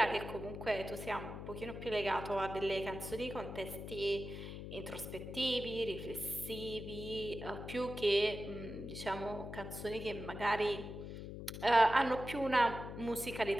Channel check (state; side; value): noise; left; hum, 8 dB below the sound